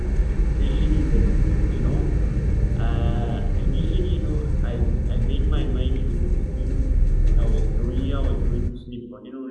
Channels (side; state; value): both; identical; correlation 1.00